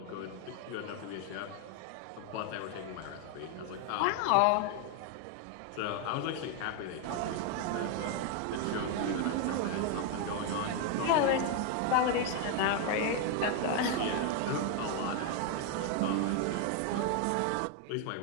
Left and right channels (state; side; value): different; both; correlation 0.01